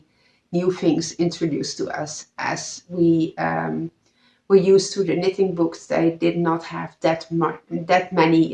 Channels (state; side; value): identical; both; correlation 1.00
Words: new things introduced to us as we were used to the knitting books. They did not have that